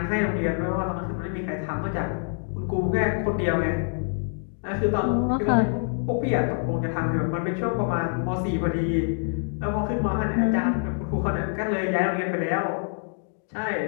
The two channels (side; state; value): right; silent; digital silence